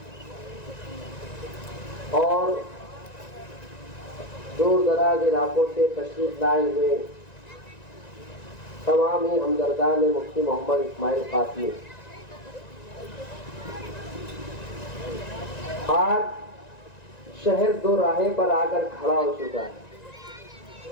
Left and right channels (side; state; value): right; late; 1.9 ms